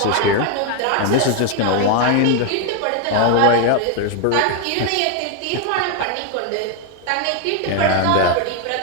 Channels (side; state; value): both; different; correlation 0.01